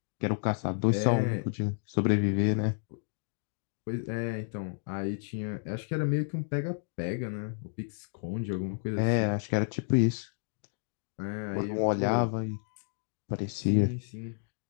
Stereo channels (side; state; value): right; silent; digital silence